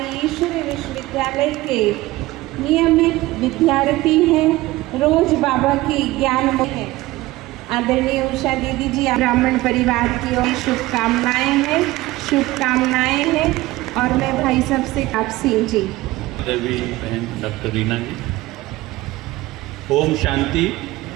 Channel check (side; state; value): left; quieter; 18.4 dB